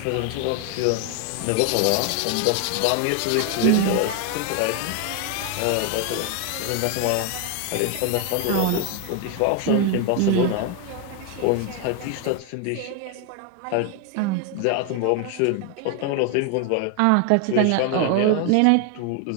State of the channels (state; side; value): different; both; correlation 0.01